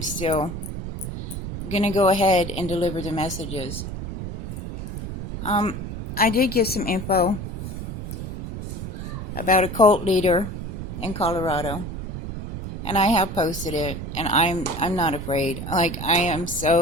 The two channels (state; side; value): noise; right; rumble, 7 dB below the sound